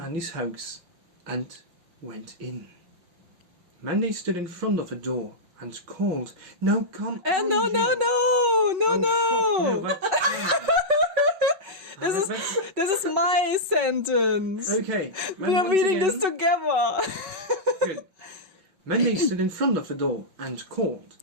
house and went in. Mandy stood in front of the door and called, "Now come on, No, Jill." no. Fuck, that's This is my sentence. okay. We are once reading again- this together. Good. Mandy stood in front of the door and called.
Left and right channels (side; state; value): left; late; 5.7 ms